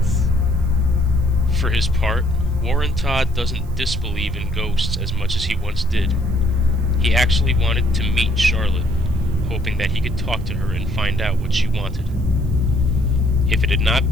For his part, Warren Todd doesn't disbelieve in ghosts as much as he once did. He actually wanted to meet Charlotte, hoping that he could talk to her and find out what she wanted. If it had not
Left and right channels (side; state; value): right; noise; hiss, 28 dB below the sound